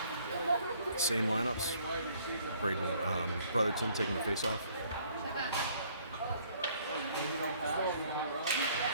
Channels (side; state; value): both; inverted; correlation -0.61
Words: Same lineups. Braden Brotherton taking the face-off.